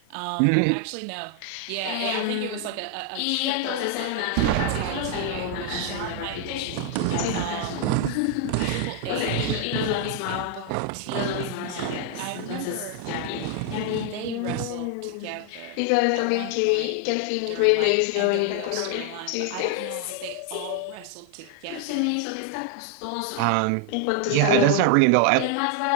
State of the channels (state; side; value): different; both; correlation 0.00